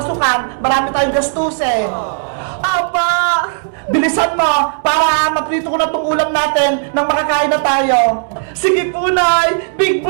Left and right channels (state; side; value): silent; left; digital silence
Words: marami tayong gastusin. Apa! Bilisan mo para maprito ko na itong ulam natin nang makakain na tayo. Sige po, Nay! Big